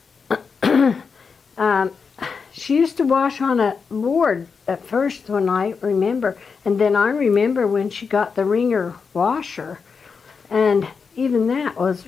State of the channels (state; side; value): quieter; right; 5.5 dB